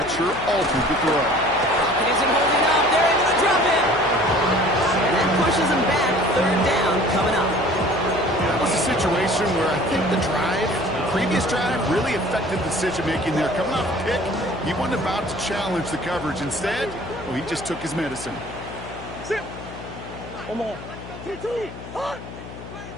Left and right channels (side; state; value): left; noise; hum, 13 dB below the sound